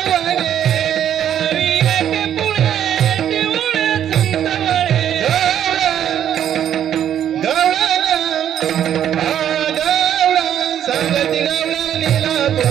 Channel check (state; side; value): quieter; left; 10.1 dB